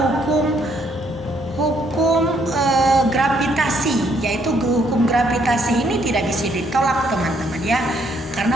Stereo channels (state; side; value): normal; both; correlation 0.70